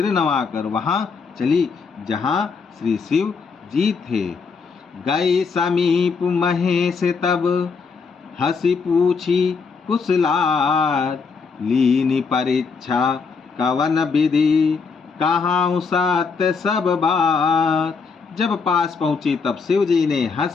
नवाकर वहाँ चली जहाँ श्री शिव जी थे। गए समीप महेश तब, हंसी पूछी कुशलात। लीनी परीक्षा कवन विधि, कहाँ सत्य सब बात। जब पास पहुंची तब शिव जी ने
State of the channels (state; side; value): quieter; right; 5.1 dB